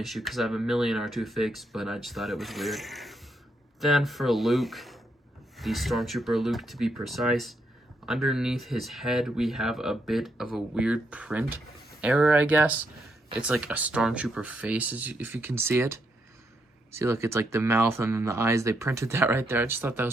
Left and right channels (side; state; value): both; normal; correlation 0.78